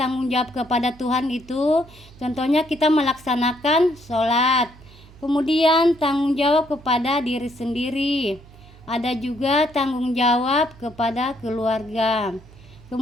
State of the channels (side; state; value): right; noise; hum, 22 dB below the sound